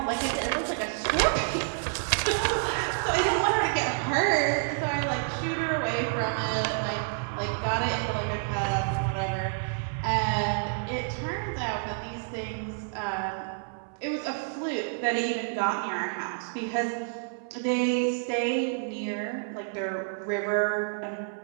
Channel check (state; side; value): silent; left; 59 dB below the other